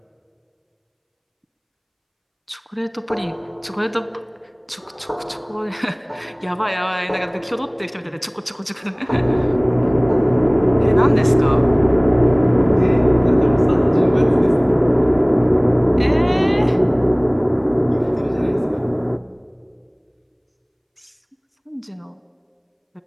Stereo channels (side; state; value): both; identical; correlation 1.00